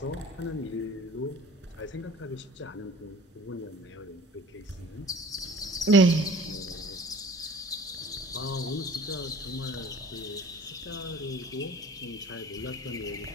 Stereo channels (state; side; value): normal; both; correlation 0.46